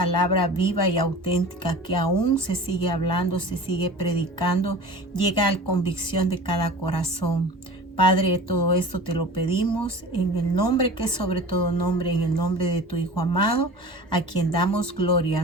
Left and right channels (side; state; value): both; normal; correlation 0.38